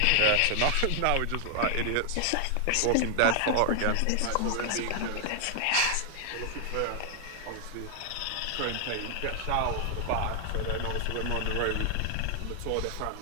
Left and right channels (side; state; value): both; different; correlation 0.00